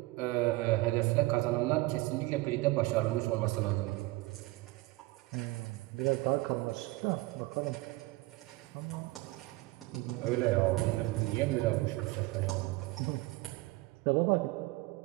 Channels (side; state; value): left; quieter; 20.9 dB